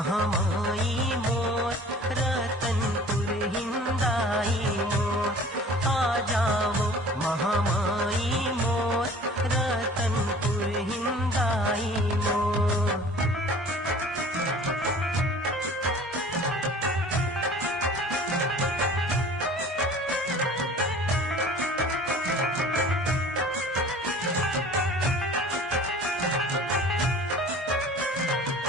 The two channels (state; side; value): normal; both; correlation 0.46